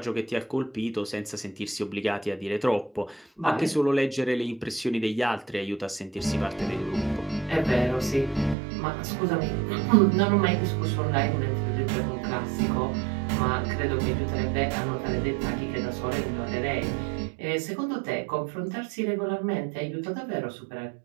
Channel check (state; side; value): drops out; left; at 8.6 s